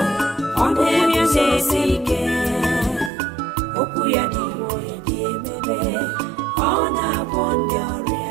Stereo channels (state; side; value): drops out; left; at 3.1 s